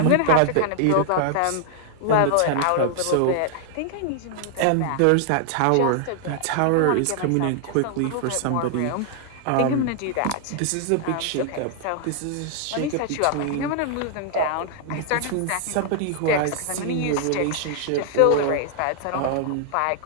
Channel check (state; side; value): different; both; correlation 0.00